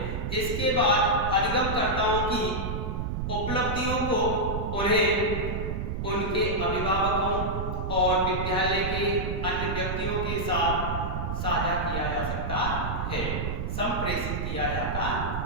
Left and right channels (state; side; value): noise; right; rumble, 3 dB below the sound